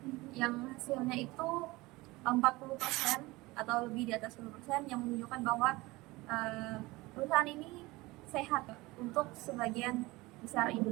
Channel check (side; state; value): left; quieter; 21.4 dB